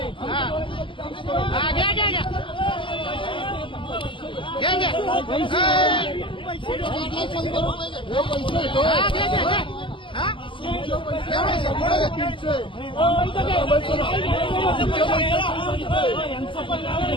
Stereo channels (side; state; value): right; late; 0.25 ms